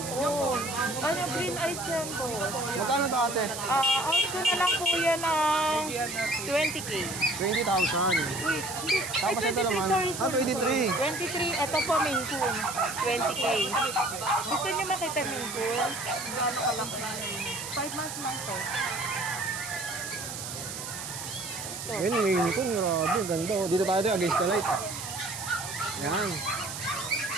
Oo. Ano, green eyes yan po. Magkano to, ate? Out ko na lang po yan ng 20K. 20,000. Wait, hindi. Tapos Ay, ito 23, naman. sorry. 23. 23, ito po Maine Coon. 20K. Gusto niyo makita Maine Coon? Gaano kalaki? 5 months lang po. Ayan, Maine Coon. Grabe, ganda, oh. Dito tayo against the light. Yan.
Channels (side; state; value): right; noise; hiss, 8 dB below the sound